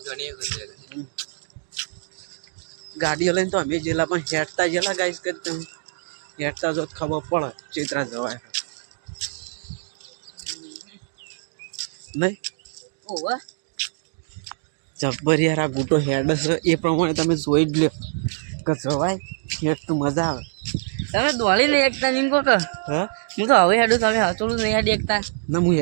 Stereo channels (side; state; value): left; silent; digital silence